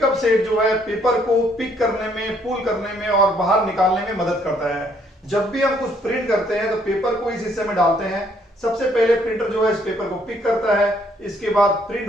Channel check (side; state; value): both; normal; correlation 0.67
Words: सेट जो है पेपर को पिक करने में, पुल करने में और बाहर निकालने में मदद करता है। जब भी हम कुछ प्रिंट करते हैं तो पेपर को इस हिस्से में डालते हैं। सबसे पहले प्रिंटर जो है इस पेपर को पिक करता है, इसके बाद प्रिंट